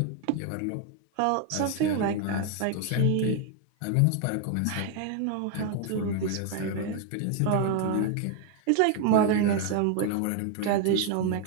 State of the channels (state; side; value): different; both; correlation 0.01